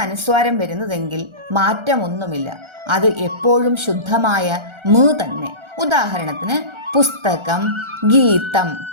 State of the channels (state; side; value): late; left; 1.4 ms